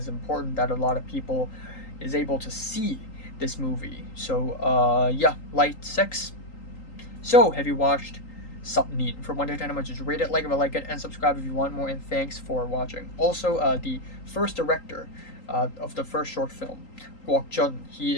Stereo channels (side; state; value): right; late; 3.8 ms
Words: important that a lot of people is able to see this movie. So yeah, light 6. So have you watched Self-Immolator? From 1 to 10, how much is rate it, like if you like it, and subscribe if you want more, and thanks for watching. Also, the first director of the first short film, Guok Jun, he